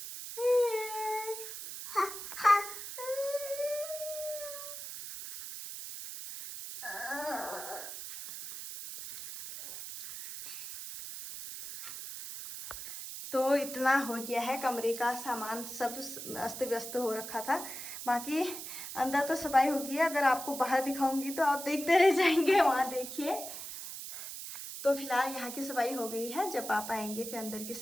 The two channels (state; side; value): noise; right; hiss, 9 dB below the sound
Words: तो इतना हो गया है, कमरे का सामान सब अस्त व्यस्त हो रखा था। बाकी अंदर तो सफाई हो गई है, अगर आपको बाहर दिखाऊंगी तो आप देखते रह जाएंगे। वहाँ देखिए, तो फिलहाल यहाँ की सफाई हो गई है, जब पापा आएंगे फिर अंदर की